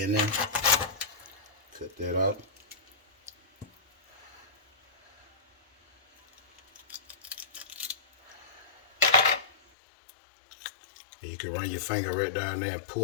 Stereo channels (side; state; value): right; drops out; at 9.6 s